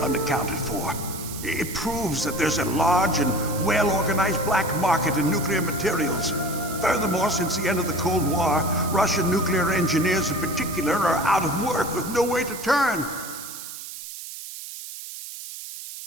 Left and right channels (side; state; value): right; noise; hiss, 11 dB below the sound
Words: unaccounted for. It proves that there's a large and well-organized black market in nuclear materials. Furthermore, since the end of the Cold War, Russian nuclear engineers in particular are out of work with no way to turn.